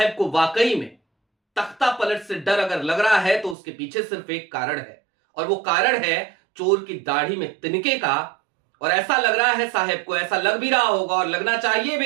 को वाकई में तख्ता पलट से डर अगर लग रहा है तो उसके पीछे सिर्फ एक कारण है, और वो कारण है चोर की दाढ़ी में तिनके का। और ऐसा लग रहा है साहब को, ऐसा लग भी रहा होगा और लगना चाहिए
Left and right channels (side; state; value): left; drops out; at 3.6 s